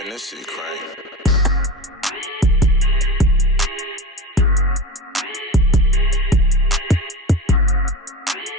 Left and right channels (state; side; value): normal; both; correlation 0.30